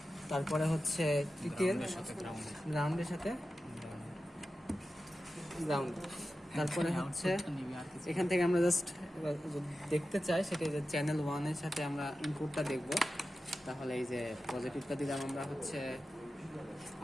তারপরে হচ্ছে টিটিএল গ্রাউন্ডের সাথে গ্রাউন্ড, তারপরে হচ্ছে এখান থেকে আমরা জাস্ট দেখতে চাই সেটা যে চ্যানেল 1-এর সাথে আমরা ইনপুটটা দেখব। তাহলে এই যে পজিটিভটা দিলাম আমরা হচ্ছে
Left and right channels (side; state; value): both; normal; correlation 0.93